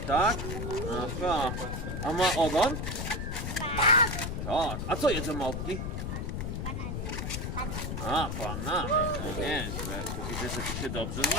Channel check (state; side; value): noise; left; rumble, 3 dB below the sound